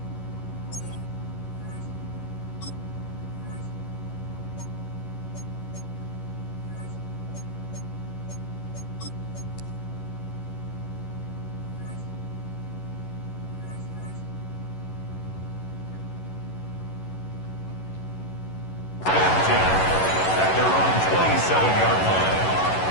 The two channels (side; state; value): right; late; 11 ms